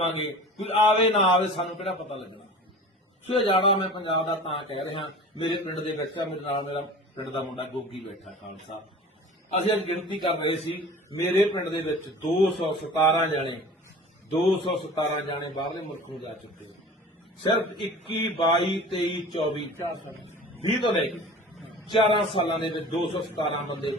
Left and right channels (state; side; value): normal; both; correlation 0.40